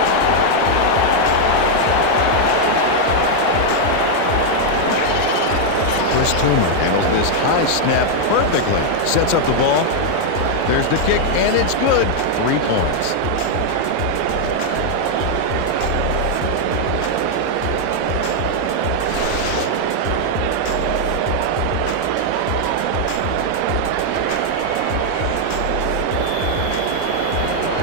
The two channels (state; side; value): different; both; correlation 0.00